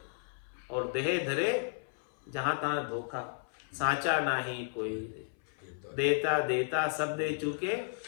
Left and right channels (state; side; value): silent; right; 55 dB below the other